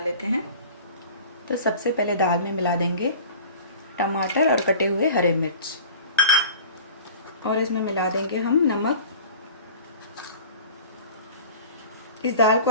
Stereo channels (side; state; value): both; inverted; correlation -0.41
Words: लेते हैं। तो सबसे पहले दाल में मिला देंगे टमाटर और कटे हुए हरे मिर्च, और इसमें मिला देंगे हम नमक। इस दाल